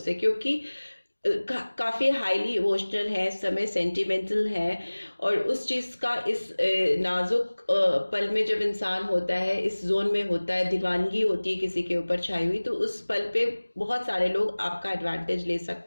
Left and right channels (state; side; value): inverted; both; correlation -1.00